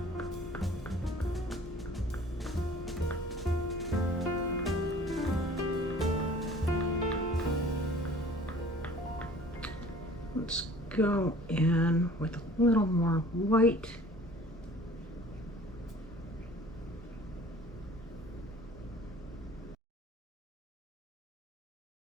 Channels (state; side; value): normal; both; correlation 0.49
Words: Let's go in with a little more white.